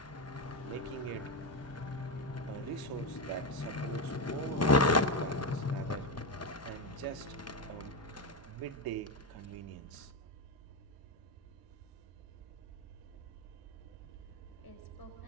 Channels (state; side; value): normal; both; correlation 0.10